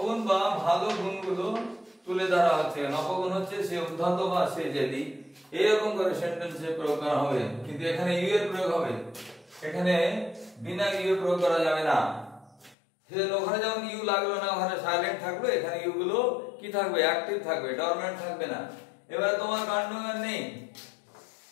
বা ভালো গুণগুলো তুলে ধরা হচ্ছে। অপগুণ হচ্ছে সে উদ্ধত বা সে জেদি, এরকম করে সেন্টেন্সে প্রয়োগ করা হবে। কিন্তু এখানে ইউ এর প্রয়োগ হবে, এখানে বিনা ইউ এর প্রয়োগ করা যাবে না। সেজন্য ওখানে যেমন ইউ লাগলো না, ওখানে সাইলেন্ট থাকবে, এখানে ইউ গুলো কি থাকবে? অ্যাক্টিভ থাকবে, ডরমেন্ট থাকবে না। এবারে তোমার কাণ্ডজ্ঞান নেই,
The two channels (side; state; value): right; drops out; at 12.8 s